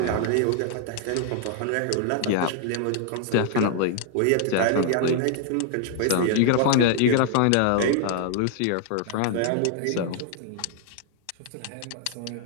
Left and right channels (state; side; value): different; both; correlation 0.00